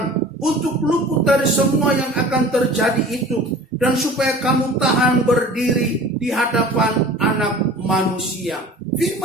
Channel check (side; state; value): both; normal; correlation 0.42